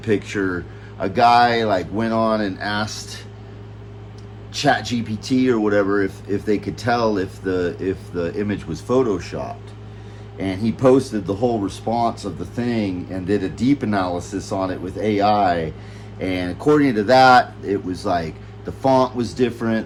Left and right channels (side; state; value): both; identical; correlation 1.00